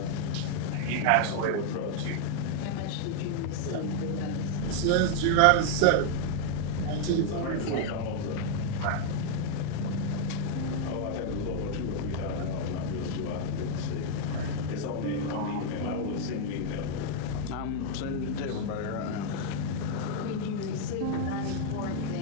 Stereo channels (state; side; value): different; both; correlation 0.00